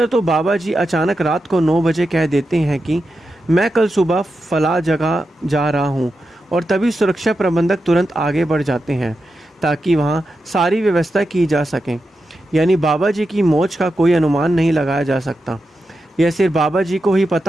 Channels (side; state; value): both; normal; correlation 0.89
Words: तो बाबा जी अचानक रात को 9 बजे कह देते हैं कि मैं कल सुबह फला जगह जा रहा हूँ, और तभी सुरक्षा प्रबंधक तुरंत आगे बढ़ जाते हैं ताकि वहाँ सारी व्यवस्था की जा सके। यानी बाबा जी की मौज का कोई अनुमान नहीं लगाया जा सकता। यह सिर्फ बाबा जी को ही